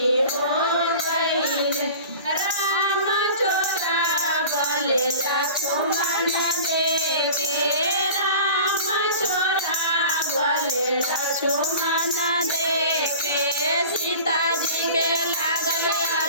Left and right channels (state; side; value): inverted; both; correlation -0.39